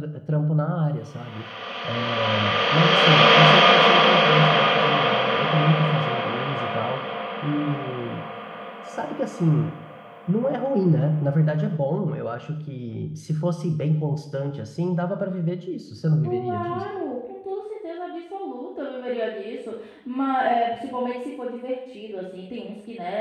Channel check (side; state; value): both; identical; correlation 1.00